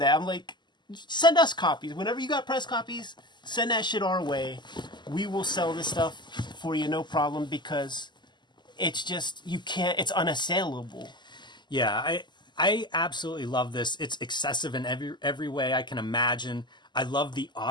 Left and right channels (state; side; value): late; right; 0.21 ms